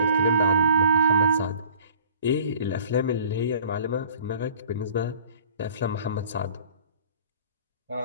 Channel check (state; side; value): inverted; both; correlation -0.50